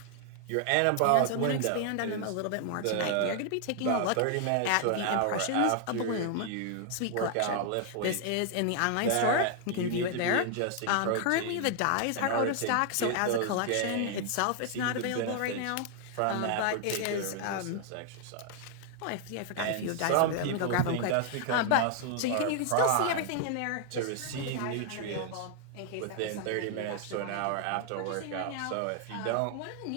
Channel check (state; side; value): different; both; correlation 0.00